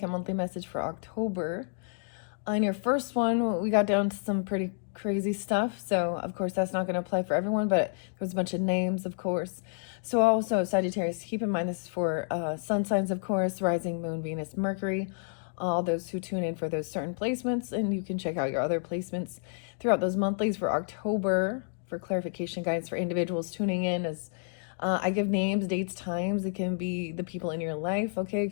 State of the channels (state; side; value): silent; right; digital silence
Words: monthly message for October. On your first one, we got down to some pretty crazy stuff. So, of course, that's not going to apply for everyone, but there's a bunch of names, of course. So, also, Sagittarius, keep in mind this is for sun signs, of course, rising, moon, Venus, Mercury. All those who tune in for those certain placements, and you can check out your other placements throughout those monthlies for October for clarification guides for individuals tuning in as I give names, dates, times. It can be the people in your life, okay? It